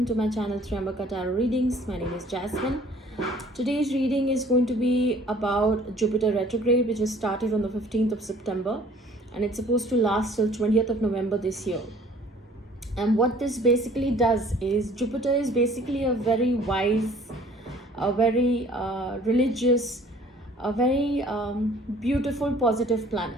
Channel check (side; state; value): both; normal; correlation 0.53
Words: to my channel Triambaka Tarot Readings. My name is Jasmine. Today's reading is going to be about Jupiter retrograde, which has started on the 15th of September and it's supposed to last till 20th of November this year. And what this basically does is Jupiter is basically a very wise, a very religious, a very beautiful, positive